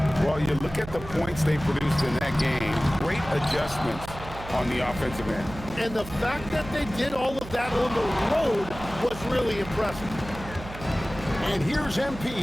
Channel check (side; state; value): right; noise; hum, 13 dB below the sound